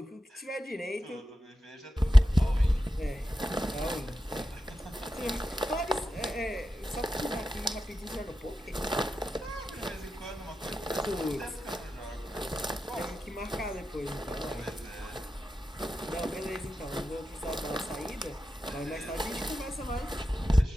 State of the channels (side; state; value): both; normal; correlation 0.90